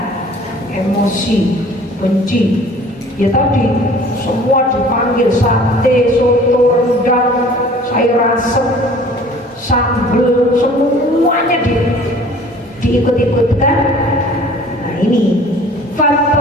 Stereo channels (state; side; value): normal; both; correlation 0.49